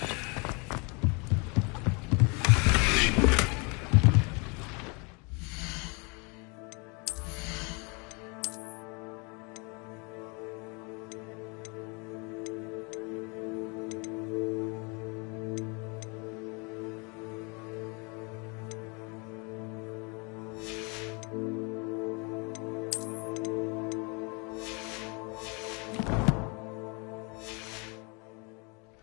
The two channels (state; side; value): quieter; right; 31.6 dB